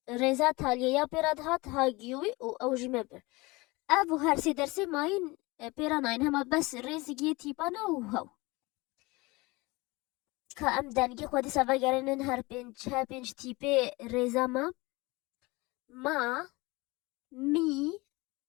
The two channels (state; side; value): quieter; right; 23.4 dB